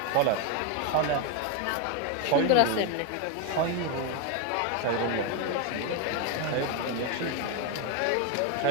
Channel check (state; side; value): different; both; correlation 0.02